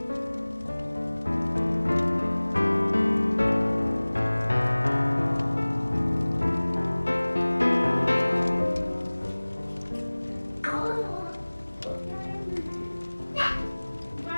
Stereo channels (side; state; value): both; inverted; correlation -1.00